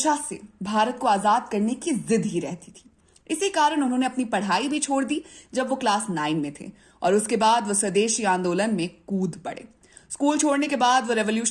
से भारत को आजाद करने की जिद ही रहती थी। इसी कारण उन्होंने अपनी पढ़ाई भी छोड़ दी जब वो क्लास 9 में थे और उसके बाद वो स्वदेशी आंदोलन में कूद पड़े। स्कूल छोड़ने के बाद वो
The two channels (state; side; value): identical; both; correlation 1.00